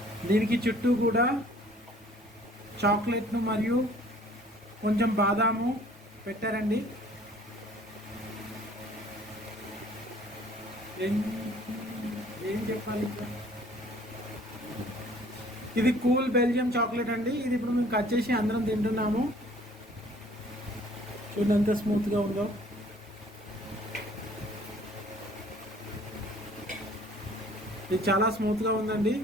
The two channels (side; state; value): both; normal; correlation 0.55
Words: దీనికి చుట్టూ కూడా చాక్లెట్ను మరియు కొంచెం బాదాము పెట్టారండి. ఏం చెప్పాలి, ఇది కూల్ బెల్జియం చాక్లెట్ అండి. ఇది ఇప్పుడు మేము కట్ చేసి అందరం తింటున్నాము. చూడండి ఎంత స్మూత్గా ఉందో. ఇది చాలా స్మూత్గా ఉందండి.